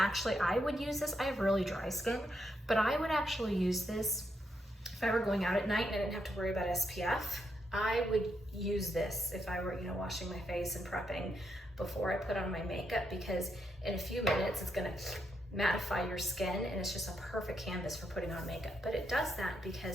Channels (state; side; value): normal; both; correlation 0.79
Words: I would use this. I have really dry skin, but I would actually use this if I were going out at night and I didn't have to worry about SPF. I would use this if I were, you know, washing my face and prepping before I put on my makeup, because in a few minutes it's gonna mattify your skin and it's just a perfect canvas for putting on makeup. But it does that